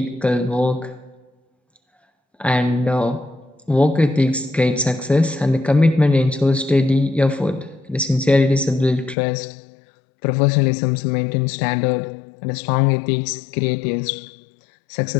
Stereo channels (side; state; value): right; drops out; at 9.2 s